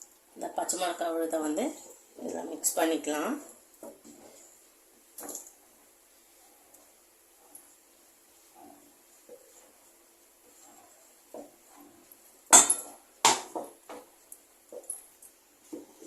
இந்த பச்சை மிளகாய் விழுதை வந்து இதில் மிக்ஸ் பண்ணிக்கலாம்.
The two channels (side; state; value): both; identical; correlation 1.00